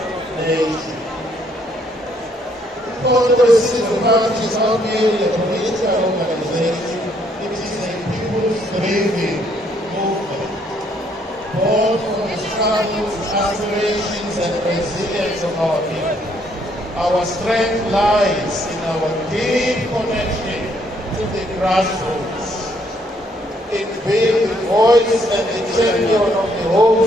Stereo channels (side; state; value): both; normal; correlation 0.69